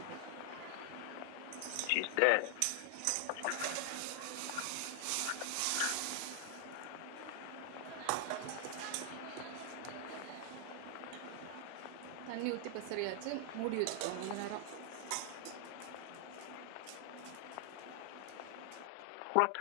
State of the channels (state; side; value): different; both; correlation 0.00